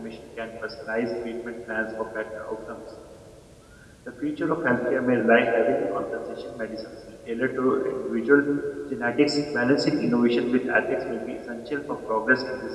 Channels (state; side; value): identical; both; correlation 1.00